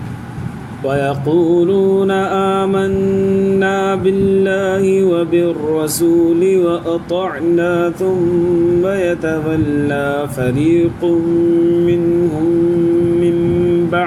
ويقولون آمنا بالله وبالرسول وأطعنا ثم يتولى فريق منهم من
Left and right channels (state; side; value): identical; both; correlation 1.00